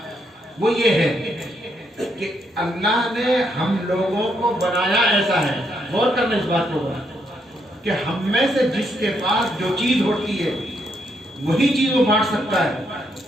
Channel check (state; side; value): normal; both; correlation 0.76